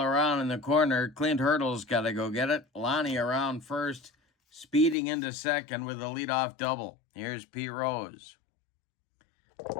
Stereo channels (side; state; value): right; drops out; at 5.0 s